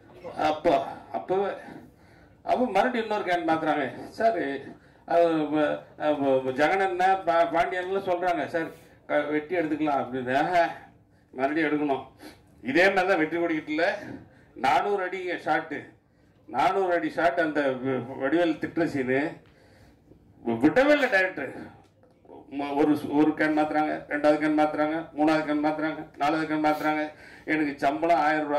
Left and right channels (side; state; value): both; identical; correlation 1.00